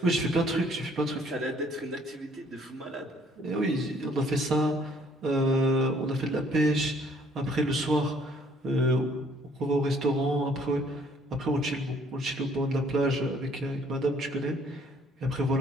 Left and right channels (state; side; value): normal; both; correlation 0.61